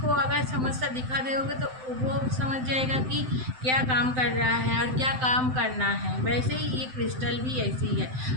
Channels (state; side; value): late; left; 7.8 ms